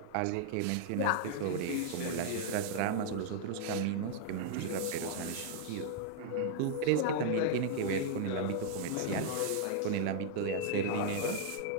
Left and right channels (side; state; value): both; different; correlation -0.01